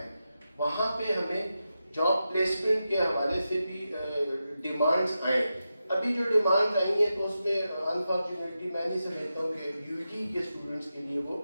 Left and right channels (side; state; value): both; inverted; correlation -0.90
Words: وہاں پہ ہمیں جاب پلیسمنٹ کے حوالے سے بھی ڈیمانڈز آئیں. ابھی جو ڈیمانڈز آئی ہیں تو اس میں انفارچونیٹلی میں نہیں سمجھتا ہوں کہ یو جی کے اسٹوڈنٹس کے لیے وہ